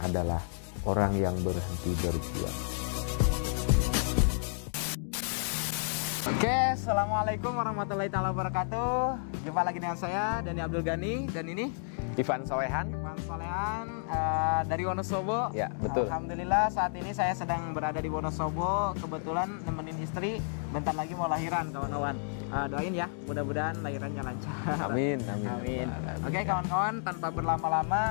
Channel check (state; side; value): silent; right; digital silence